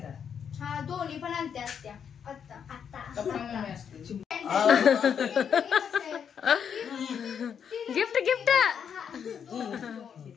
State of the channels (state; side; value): quieter; right; 7.6 dB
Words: हा दोन्ही पण आणते असत्या. आता गिफ्ट गिफ्ट